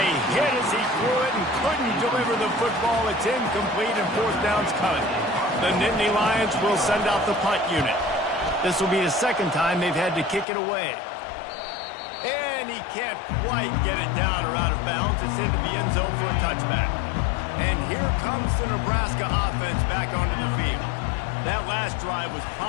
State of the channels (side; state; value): right; drops out; at 10.5 s